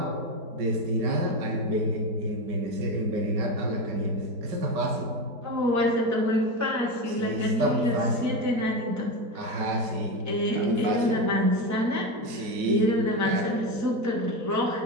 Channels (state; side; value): late; left; 5.2 ms